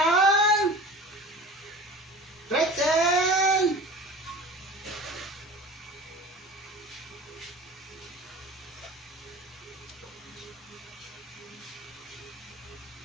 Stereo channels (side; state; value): both; normal; correlation 0.38